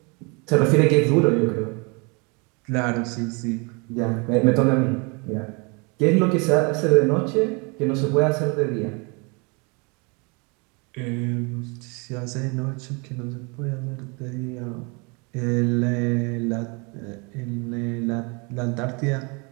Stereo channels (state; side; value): quieter; left; 30.7 dB